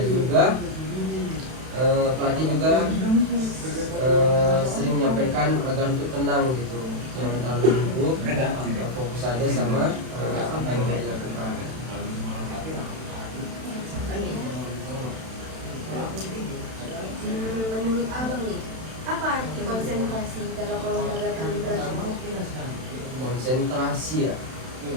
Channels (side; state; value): left; late; 31 ms